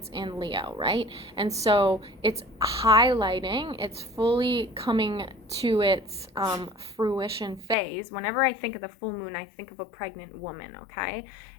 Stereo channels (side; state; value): right; drops out; at 7.8 s